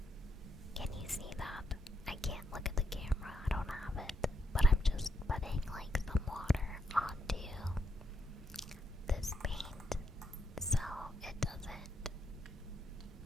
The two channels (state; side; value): normal; both; correlation 0.78